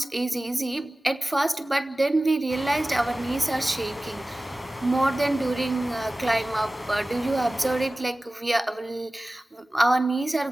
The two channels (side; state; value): both; normal; correlation 0.97